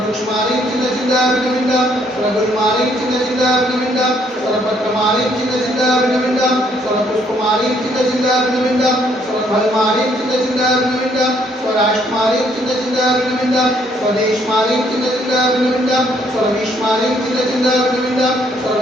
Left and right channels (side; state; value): both; normal; correlation 0.67